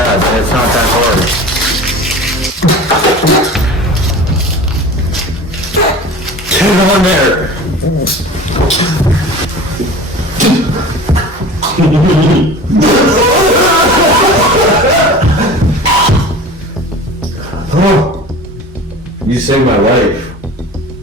and it's not that hard. Get on there! Oh, you saved my life.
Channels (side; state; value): both; normal; correlation 0.37